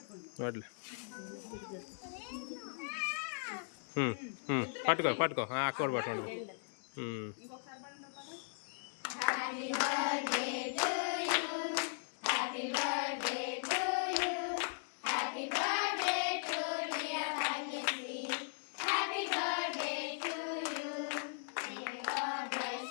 నోట్లే పట్టుకో పట్టుకో అక్క కూడా పట్టుకుంటుంది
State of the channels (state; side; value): silent; right; digital silence